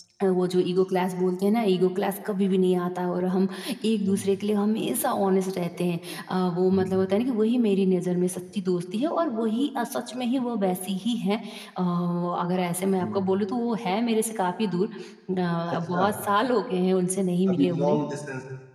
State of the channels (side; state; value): both; identical; correlation 1.00